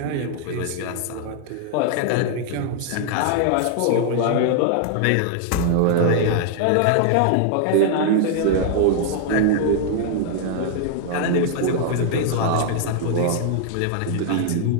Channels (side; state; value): both; different; correlation 0.00